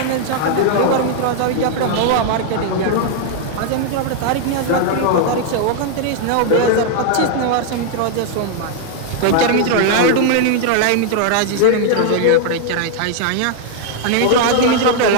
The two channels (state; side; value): different; both; correlation 0.00